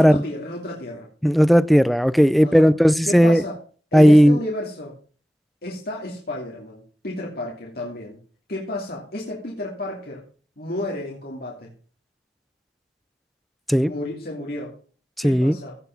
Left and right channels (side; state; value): both; normal; correlation 0.95